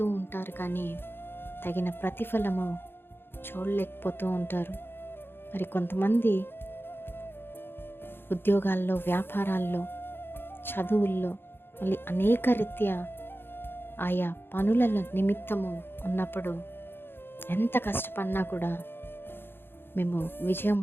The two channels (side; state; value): right; late; 0.10 ms